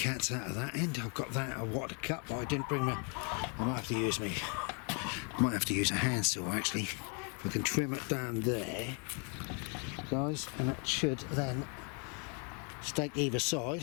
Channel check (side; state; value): right; quieter; 37.1 dB